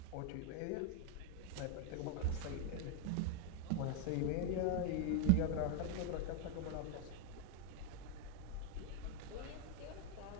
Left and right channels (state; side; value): different; both; correlation 0.00